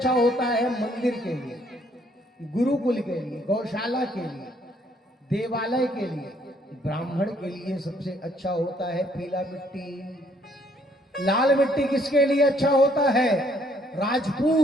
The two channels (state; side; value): normal; both; correlation 0.66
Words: होता है मंदिर के लिए, गुरुकुल के लिए, गौशाला के लिए, देवालय के लिए, ब्राह्मण के लिए सबसे अच्छा होता है पीला मिट्टी। लाल मिट्टी किसके लिए अच्छा होता है?